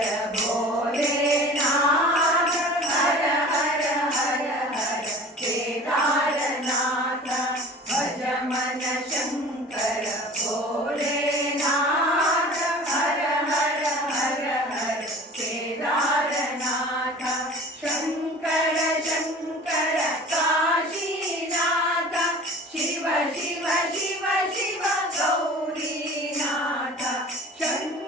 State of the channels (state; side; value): normal; both; correlation 0.41